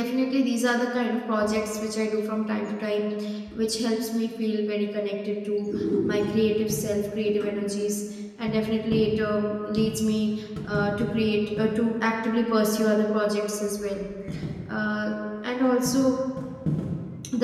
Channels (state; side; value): identical; both; correlation 1.00